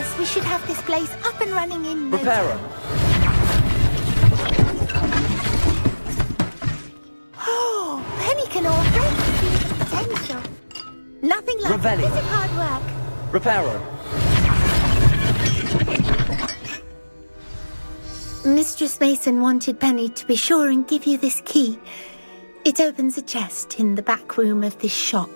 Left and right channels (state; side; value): inverted; both; correlation -1.00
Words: we should have this place up and running in no Repairer. time. Oh, Penny can already see the potential. Nothing like a bit of hard work. Repairer. Mistress Mason wanted Penny to be sure and give you this key. It opens a chest in the back room of this shop.